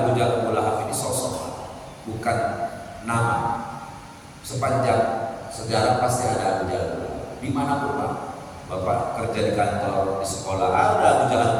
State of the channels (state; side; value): identical; both; correlation 1.00